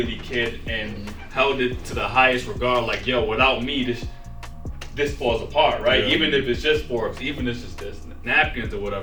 cared and held it to the highest regard. Like, yo, without me, this falls apart, right? Yeah. Even if it's just forks, even if it's just napkins or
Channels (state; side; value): identical; both; correlation 1.00